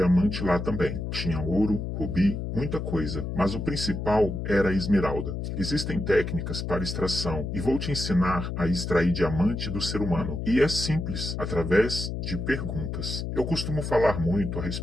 lá também. Tinha ouro, rubi, muita coisa. Mas o principal era a esmeralda. Existem técnicas para extração e vou te ensinar a extrair diamante do ser humano. E é simples, através de perguntas. Eu costumo falar muito a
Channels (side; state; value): left; noise; hum, 4 dB below the sound